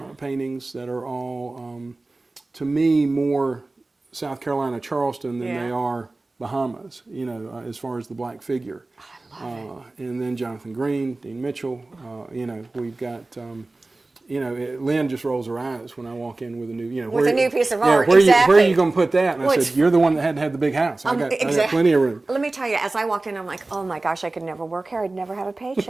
paintings that are all, to me, more South Carolina, Charleston than they are Bahamas, you know, as far as the black figure. I love And then Jonathan Green, Dean Mitchell, you know, we've got, you know, Lynn just rolls her eyes when I walk in with a new, you know, With a new piece of yeah, art, where exactly. are you going to put that? And Well, I it's- said, you're the one that had to have the big house. I got plenty of room. Let me tell you, as I walked in, I'm like, oh my gosh, I could never work here. I'd never have a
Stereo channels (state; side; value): quieter; left; 3.1 dB